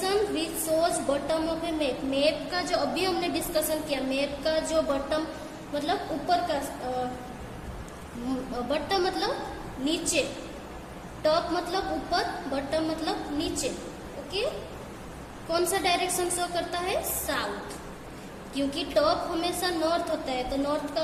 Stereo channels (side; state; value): both; identical; correlation 1.00